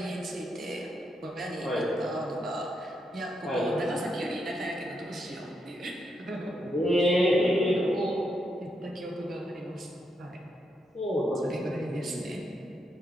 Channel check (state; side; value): normal; both; correlation 0.81